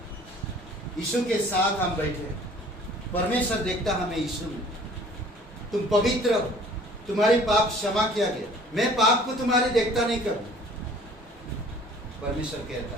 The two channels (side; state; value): both; normal; correlation 0.51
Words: यीशु के साथ हम बैठे, परमेश्वर देखता हमें यीशु में। तुम पवित्र हो, तुम्हारी पाप क्षमा किया गया। मैं पाप को तुम्हारे देखता नहीं करूं, परमेश्वर कहता